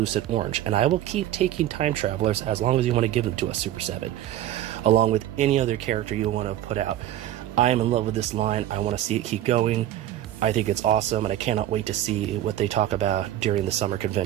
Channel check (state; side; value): quieter; left; 12.8 dB